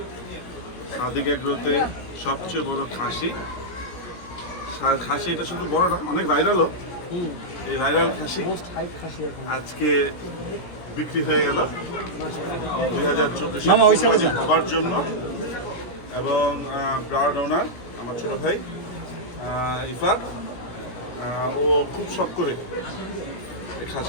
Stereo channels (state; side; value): late; right; 17 ms